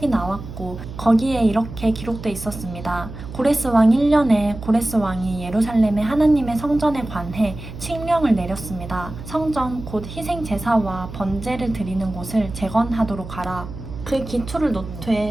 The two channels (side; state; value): right; noise; hum, 12 dB below the sound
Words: 나왔고 거기에 이렇게 기록돼 있었습니다. 고레스 왕 1년에 고레스 왕이 예루살렘의 하나님의 성전에 관해 칙령을 내렸습니다. 성전 곧 희생 제사와 번제를 드리는 곳을 재건하도록 하라. 그 기초를